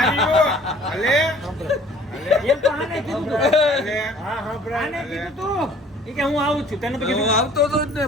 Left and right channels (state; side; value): normal; both; correlation 0.53